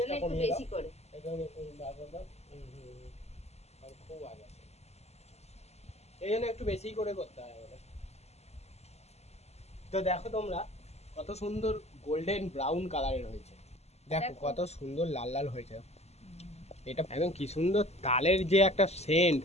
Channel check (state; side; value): late; right; 0.31 ms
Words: একটু বেশি করে। খুব আগে এই জন্য একটু বেশি করে করতে হয় আমাদের। তো দেখো তোমরা কত সুন্দর গোল্ডেন ব্রাউন কালারের হয়েছে, দেখো কত সুন্দর লাল লাল হয়েছে। এটা একদম কি সুন্দর তালের যে একটা সেন্ট,